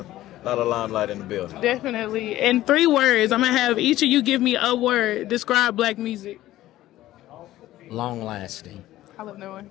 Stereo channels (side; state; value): right; quieter; 15.0 dB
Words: limelight in the building. Definitely. In 3 words, I'm gonna have each of you give me a word. Describe black music. Long lasting. I love no one.